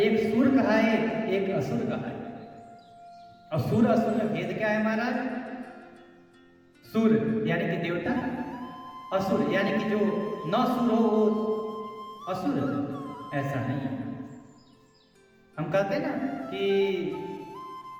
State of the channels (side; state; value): both; identical; correlation 1.00